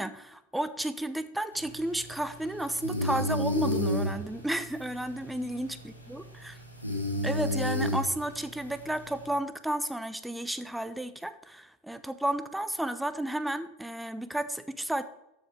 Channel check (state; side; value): normal; both; correlation 0.46